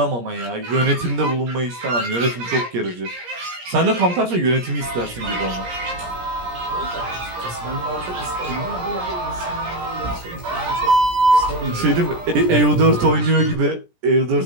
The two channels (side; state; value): left; late; 17 ms